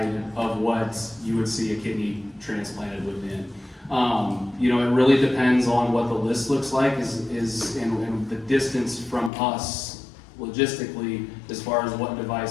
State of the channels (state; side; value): drops out; right; at 9.3 s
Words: of what you would see a kidney transplanted within. You know, it really depends on what the list looks like and the distance from us logistically as far as what